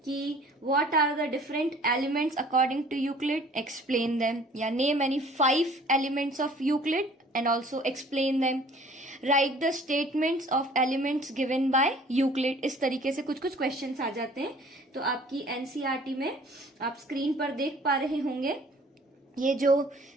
कि what are the different elements according to Euclid, explain them, या name any 5 elements of Euclid and also explain them, write the statements of elements given by Euclid। इस तरीके से कुछ कुछ क्वेश्चंस आ जाते हैं। तो आपकी NCERT में आप स्क्रीन पर देख पा रहे होंगे, ये जो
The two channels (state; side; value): normal; both; correlation 0.52